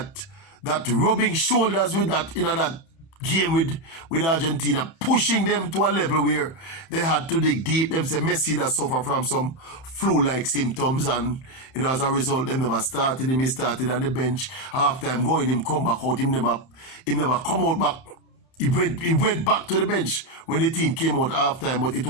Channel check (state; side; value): late; right; 30 ms